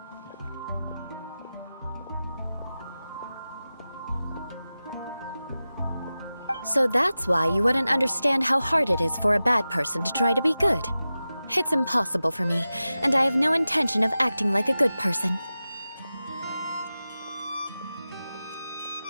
So that's why you wouldn't understand how hard it is for a bad person to try to be good. It's impossible for me, and I have no intention of acting like a good person.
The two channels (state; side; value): inverted; both; correlation -0.94